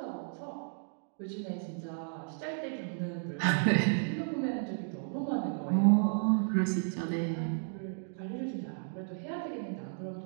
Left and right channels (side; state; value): left; silent; digital silence